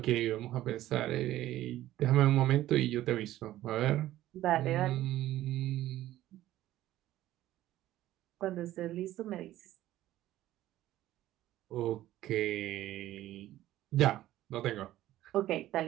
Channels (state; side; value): quieter; left; 14.5 dB